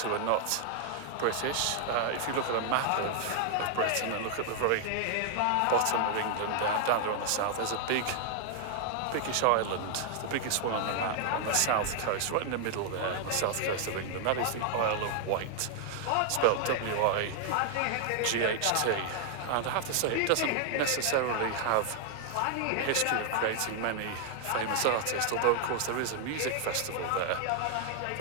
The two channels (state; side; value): different; both; correlation 0.00